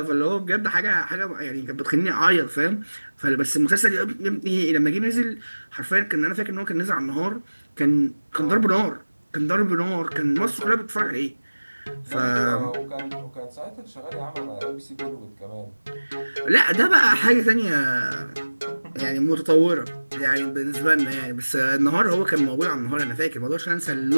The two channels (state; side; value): inverted; both; correlation -1.00